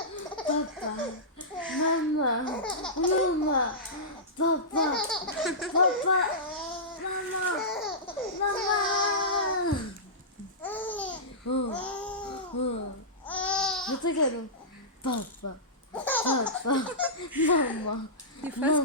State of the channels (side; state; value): both; normal; correlation -0.16